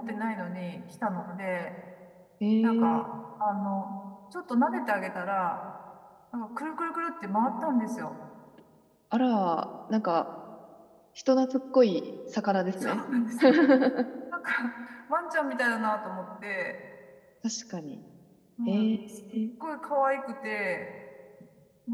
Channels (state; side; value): identical; both; correlation 1.00